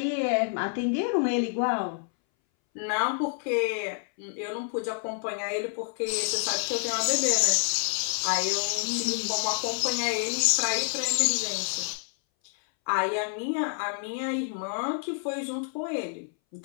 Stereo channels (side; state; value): right; silent; 59 dB below the other